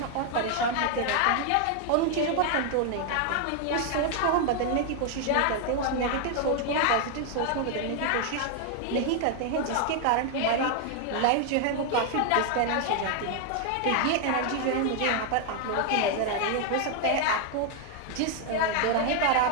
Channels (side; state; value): both; different; correlation 0.00